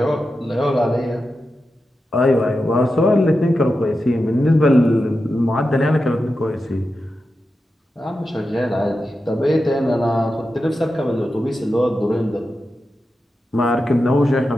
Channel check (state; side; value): normal; both; correlation 0.90